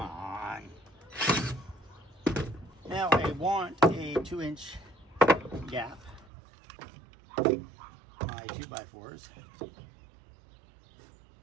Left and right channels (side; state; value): left; drops out; at 6.2 s